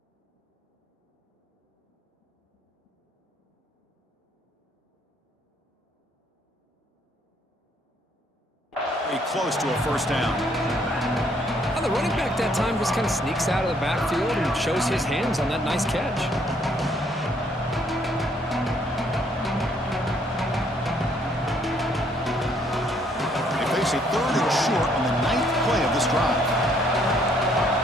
Close to a 1st down. Well, the running back that time just kind of sneaks out of the backfield and shows his hands on that nice catch. They face a 3rd and short on the 9th play of this drive.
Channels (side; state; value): both; normal; correlation 0.67